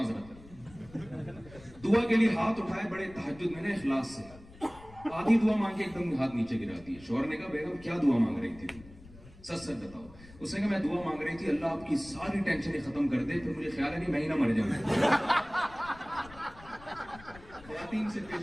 دعا کے لیے ہاتھ اٹھائے بڑے تہجد میں نے اخلاص سے, آدھی دعا مانگ کے ایک دم ہاتھ نیچے گرا دی. شوہر نے کہا بیگم کیا دعا مانگ رہی تھی؟ سچ سچ بتاؤ. اس نے کہا میں دعا مانگ رہی تھی اللہ آپ کی ساری ٹینشنیں ختم کر دے, پھر مجھے خیال ہے کہ میں ہی نہ مر جاؤں. خواتین سے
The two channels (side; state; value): left; noise; rumble, 20 dB below the sound